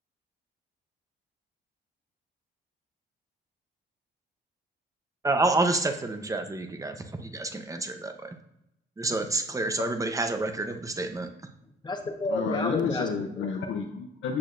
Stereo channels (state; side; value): normal; both; correlation 0.51